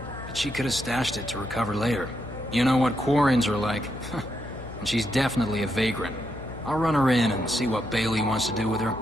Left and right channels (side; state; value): left; noise; hum, 13 dB below the sound